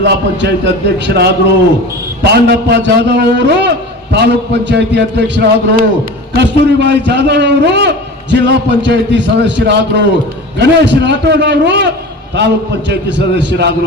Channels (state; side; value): normal; both; correlation 0.34